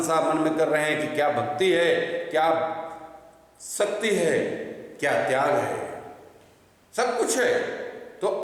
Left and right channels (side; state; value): both; identical; correlation 1.00